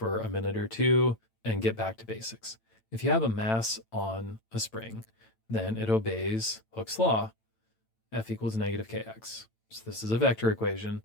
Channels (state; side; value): late; right; 8.9 ms